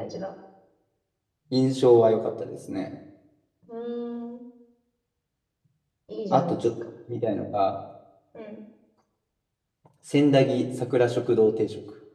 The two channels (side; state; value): both; identical; correlation 1.00